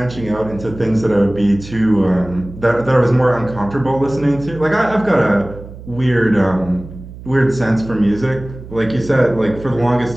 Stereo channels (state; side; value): noise; right; hum, 15 dB below the sound